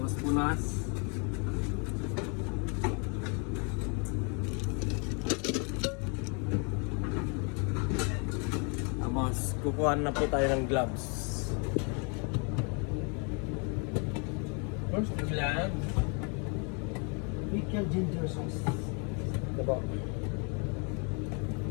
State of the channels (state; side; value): quieter; right; 35.8 dB